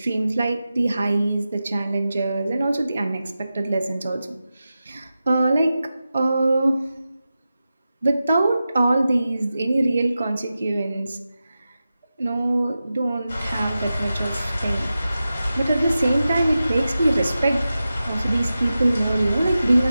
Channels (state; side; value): inverted; both; correlation -0.93